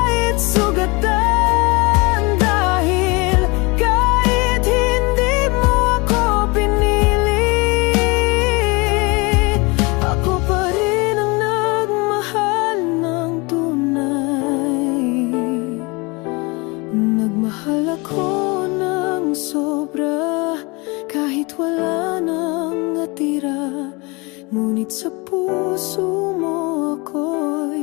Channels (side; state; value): right; quieter; 26.9 dB